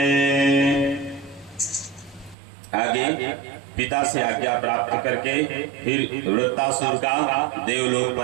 आगे पिता से आज्ञा प्राप्त करके फिर वृत्तासुर का देवलोक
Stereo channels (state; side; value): drops out; left; at 2.4 s